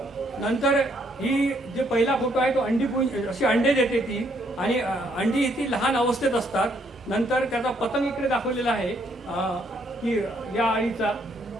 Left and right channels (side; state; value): both; normal; correlation 0.70